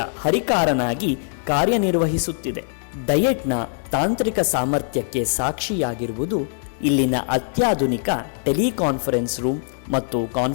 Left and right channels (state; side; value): silent; right; 64 dB below the other